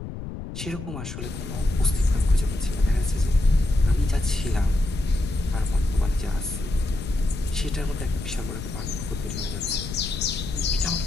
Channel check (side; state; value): left; noise; rumble, 8 dB below the sound